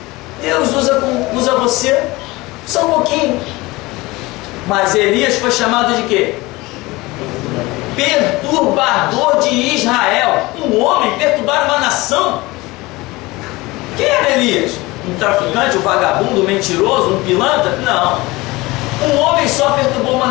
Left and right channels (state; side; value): quieter; right; 21.4 dB